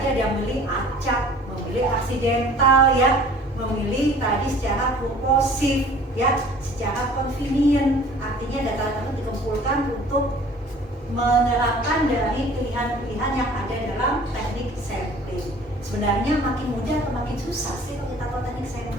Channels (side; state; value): both; normal; correlation 0.49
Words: ada yang memilih acak, memilih aksidental ya, memilih tadi secara purposif ya, secara convenient. Artinya data tersebut dikumpulkan untuk menerapkan dari pilihan-pilihan yang ada dalam teknik sampling. Sebenarnya makin mudah atau makin susah sih kalau kita tahu teknik